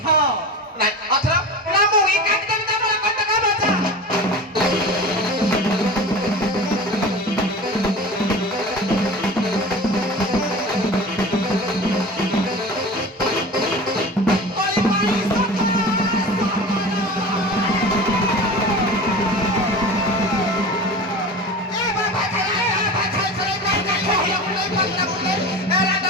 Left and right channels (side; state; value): both; normal; correlation 0.33